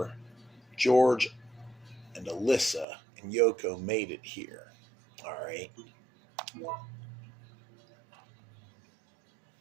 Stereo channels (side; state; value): left; drops out; at 2.9 s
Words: George and Alyssa and Yoko made it here. All right.